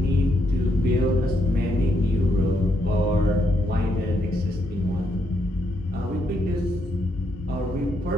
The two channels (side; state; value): both; normal; correlation 0.77